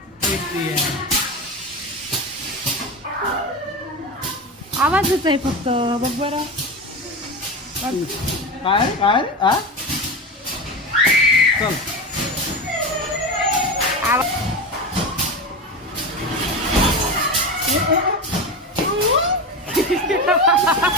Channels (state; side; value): normal; both; correlation 0.22